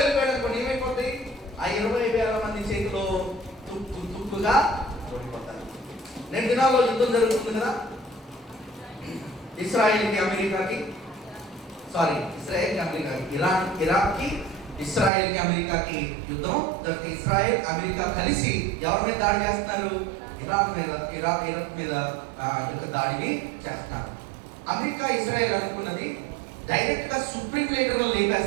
అనుకోండి, ఏమైపోతుంది? ఆ 20,000 మంది చేతిలో తుక్కుగా ఓడిపోతారు. 2 దినాల్లో యుద్ధం జరుగుతుంది కదా, ఇస్రాయేల్కి అమెరికాకి, ఇరాక్కి ఇస్రాయేల్కి అమెరికాకి యుద్ధం. ఇస్రాయేల్ అమెరికా కలిసి ఎవరి మీద దాడి చేస్తున్నారు? ఇరాక్ మీద యొక్క దాడిని చేస్తున్నారు. అమెరికా ఇజ్రాయెల్ అనుకున్నది డైరెక్ట్ గా సుప్రీం లీడర్లో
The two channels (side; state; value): left; drops out; at 15.1 s